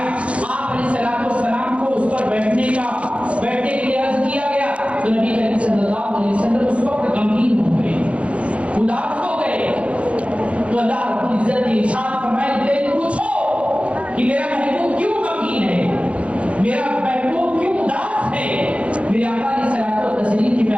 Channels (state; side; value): late; left; 0.062 ms